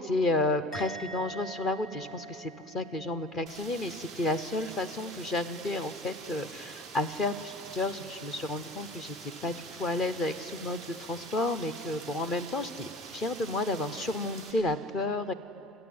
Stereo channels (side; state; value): both; normal; correlation 0.41